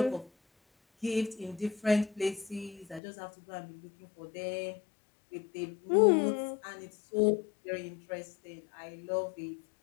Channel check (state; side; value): drops out; right; at 3.0 s